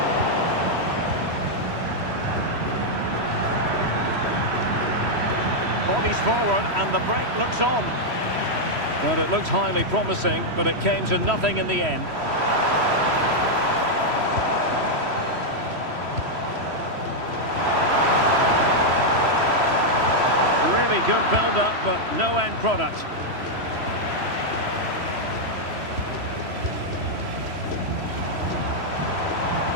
Bodies forward and the break looks on. Well, it looked highly promising, but it came to nothing in the end. Really good build-up, but no end product.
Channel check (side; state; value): left; late; 3.1 ms